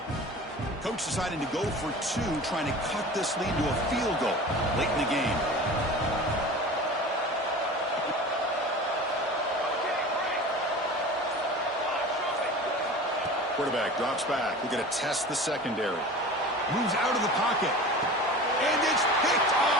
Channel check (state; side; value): normal; both; correlation 0.36